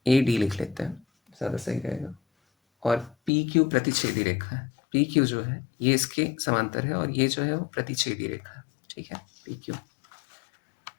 AD लिख लेते हैं, ज़्यादा सही रहेगा। और PQ प्रतिच्छेदी रेखा है, PQ जो है ये इसके समांतर है और ये जो है वो प्रतिच्छेदी रेखा है। ठीक है, PQ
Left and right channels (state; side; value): drops out; right; at 3.3 s